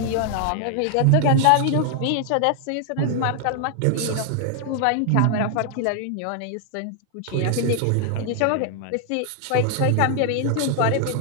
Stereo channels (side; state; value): both; different; correlation 0.00